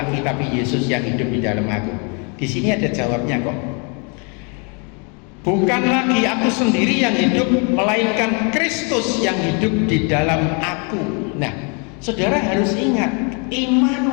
tapi Yesus yang hidup di dalam aku. Di sini ada jawabnya kok. Bukan lagi aku sendiri yang hidup, melainkan Kristus yang hidup di dalam aku. Nah, saudara harus ingat,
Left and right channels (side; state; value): right; quieter; 35.4 dB